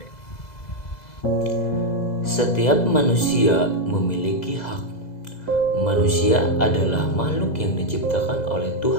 Setiap manusia memiliki hak. Manusia adalah makhluk yang diciptakan oleh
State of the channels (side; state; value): right; late; 2.0 ms